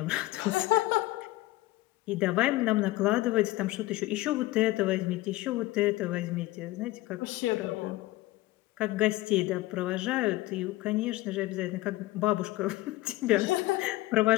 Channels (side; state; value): right; quieter; 18.4 dB